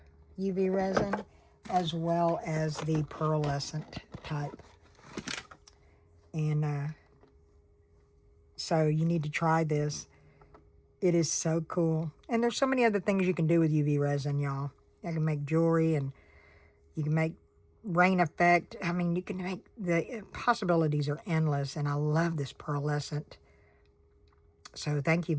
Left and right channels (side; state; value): both; identical; correlation 1.00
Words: UV resin, as well as the pearlescent type. And so you need to try this. It is so cool. And there's so many other things you can do with UV resin, y'all. You can make jewelry, and you can make rain effect. I mean, you can make, the possibilities are endless, and I love this pearlescent. So thank you,